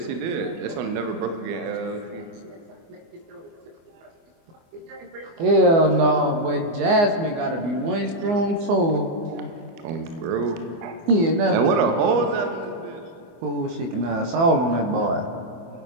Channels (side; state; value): left; late; 24 ms